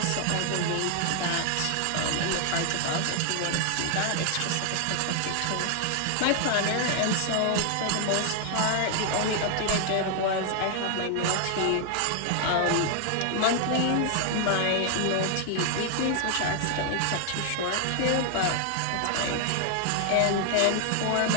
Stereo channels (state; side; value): different; both; correlation 0.00